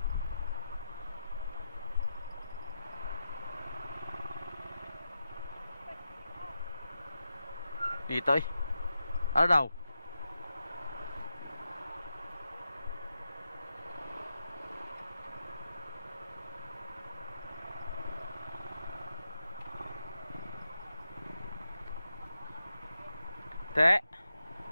Dito eh. Ano daw? Te.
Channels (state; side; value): inverted; both; correlation -0.88